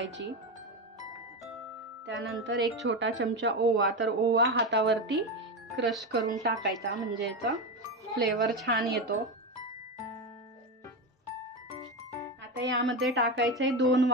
त्यानंतर एक छोटा चमचा ओवा। तर ओवा हातावरती क्रश करून टाकायचा, म्हणजे याचा फ्लेवर छान येतो। आता यामध्ये टाकायचंय 2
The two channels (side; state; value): both; normal; correlation 0.16